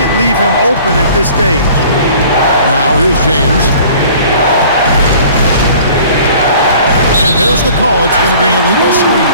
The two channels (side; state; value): both; inverted; correlation -0.49